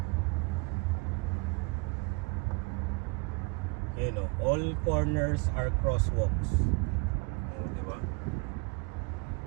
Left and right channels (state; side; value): quieter; left; 29.0 dB